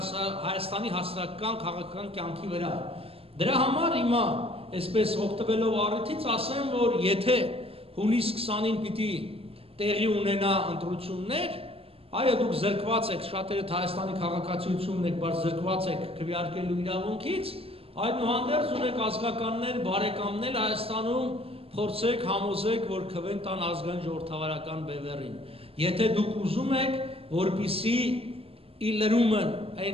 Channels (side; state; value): left; late; 0.28 ms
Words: հասարակական քաղաքական կյանքի վրա։ Դրա համար հիմա այսպես օգտվելով առիթից ասեմ, որ եթե հունիս 20-ին պիտի տեղի ունենա ընտրություններ, այո դուք զրկված եք, շատերդ Հայաստանի քաղաքացիությունն եք, բայց զրկված եք քվեարկելու իրավունքից, այդուհանդերձ ունեք ազգականներ, բարեկամներ Հայաստանում, փորձեք, համոզեք, որ քվեն տան ազգային ժողովրդավարական բևեռին։ Եթե դուք ուզում եք, որպիսի իլրումն